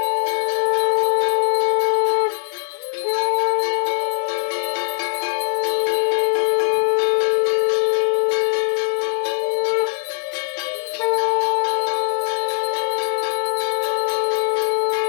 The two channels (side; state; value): right; silent; digital silence